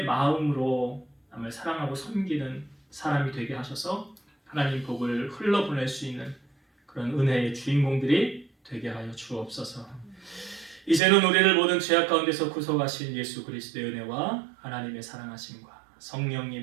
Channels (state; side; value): drops out; left; at 11.0 s